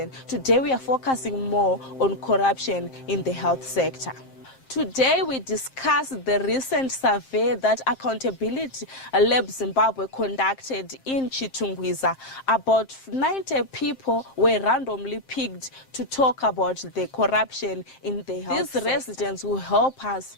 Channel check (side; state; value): right; late; 7.6 ms